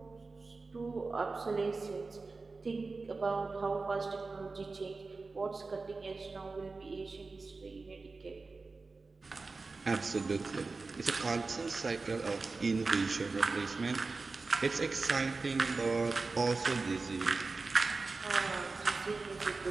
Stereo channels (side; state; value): left; quieter; 3.9 dB